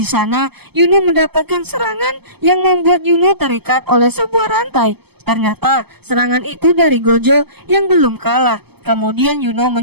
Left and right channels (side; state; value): left; late; 0.97 ms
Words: sana Yuno mendapatkan serangan yang membuat Yuno terikat oleh sebuah rantai. Ternyata serangan itu dari Gojo yang belum kalah. Kemudian Yuno